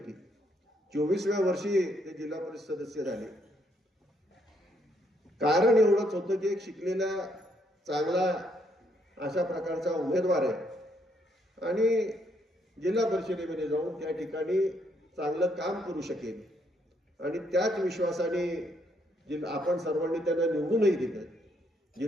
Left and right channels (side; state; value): both; normal; correlation 0.73